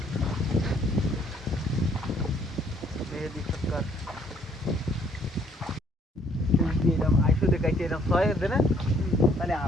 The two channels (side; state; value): both; normal; correlation 0.64